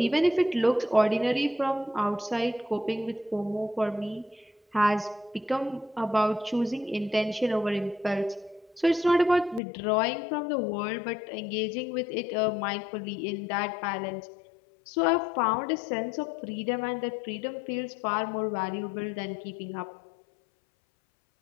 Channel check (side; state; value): right; drops out; at 9.6 s